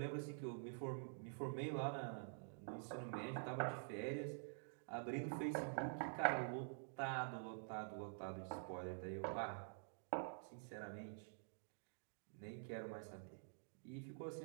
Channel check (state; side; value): silent; left; digital silence